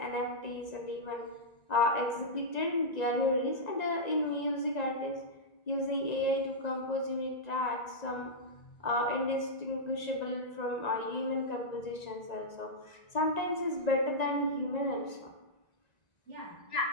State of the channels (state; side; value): late; right; 1.9 ms